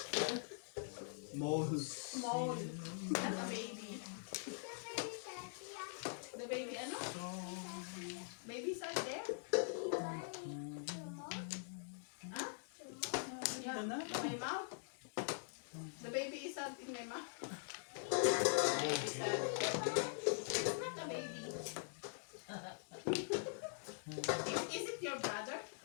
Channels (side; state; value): right; silent; digital silence